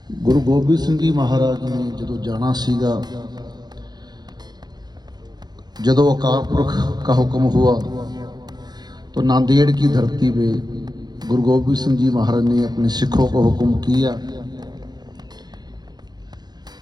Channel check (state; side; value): late; left; 0.20 ms